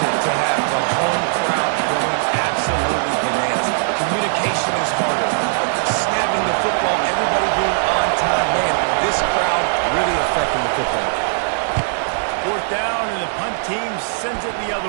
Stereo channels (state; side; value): silent; left; digital silence